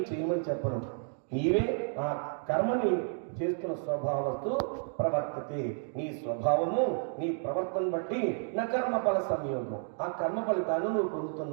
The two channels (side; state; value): left; silent; 57 dB below the other